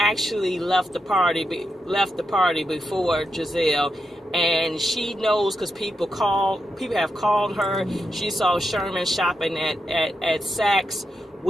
left the party before Giselle. And she knows because people have called her. She saw Sherman shopping at Saks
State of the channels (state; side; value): normal; both; correlation 0.85